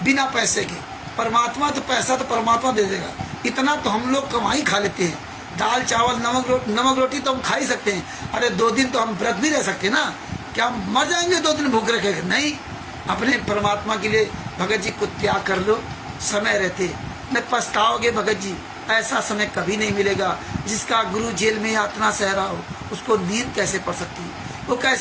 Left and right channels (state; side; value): identical; both; correlation 1.00